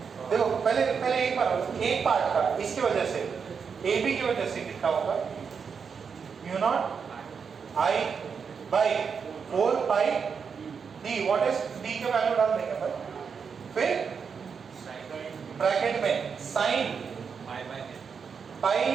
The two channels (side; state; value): left; quieter; 6.2 dB